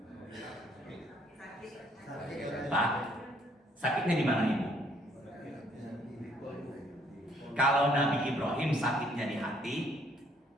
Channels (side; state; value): both; normal; correlation 0.65